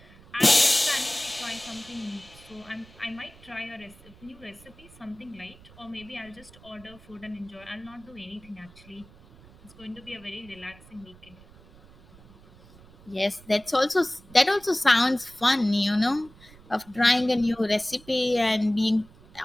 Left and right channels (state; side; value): noise; right; rumble, 23 dB below the sound